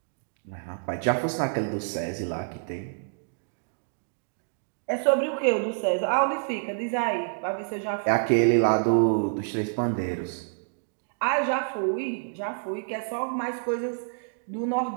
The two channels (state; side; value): silent; left; digital silence